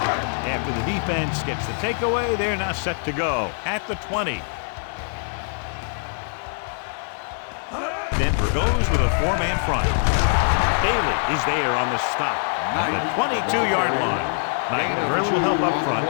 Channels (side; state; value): right; silent; digital silence